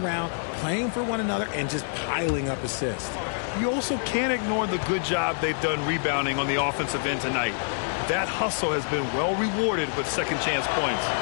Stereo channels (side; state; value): right; silent; digital silence